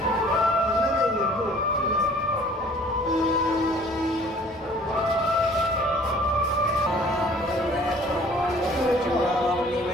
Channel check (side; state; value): both; normal; correlation 0.53